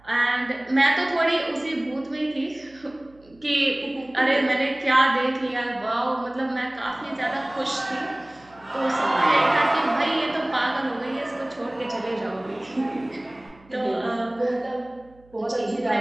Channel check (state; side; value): noise; right; hum, 28 dB below the sound